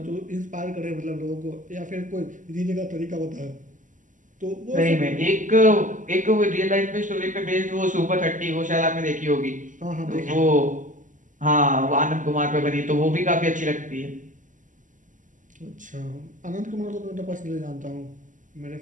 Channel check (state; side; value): late; left; 0.37 ms